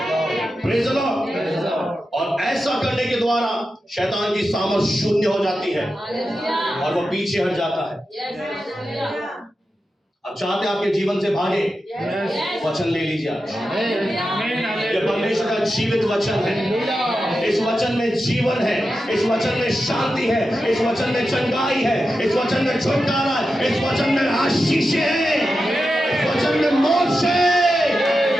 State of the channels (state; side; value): normal; both; correlation 0.90